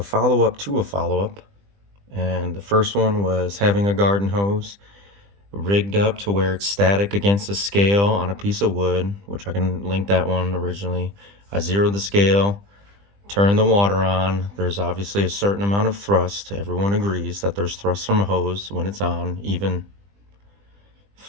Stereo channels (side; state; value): left; late; 20 ms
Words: follow-up to a follow-up. And the first one was having a garden hose rigged up to where it's static against a scale on a piece of wood, which I can link that one originally. I zeroed the scale, turned the water on. There's obviously a certain amount of thrust. Everyone agrees that there's thrust from a hose when it's on, even